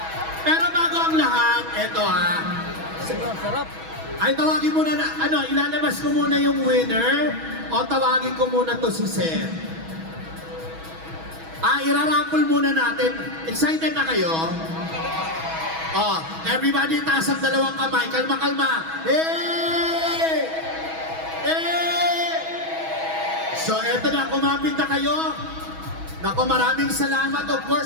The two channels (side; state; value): left; late; 6.2 ms